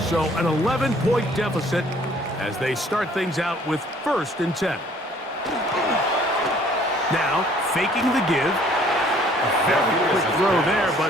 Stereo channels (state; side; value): normal; both; correlation 0.58